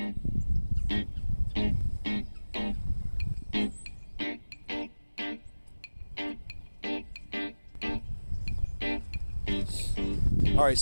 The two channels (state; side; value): inverted; both; correlation -1.00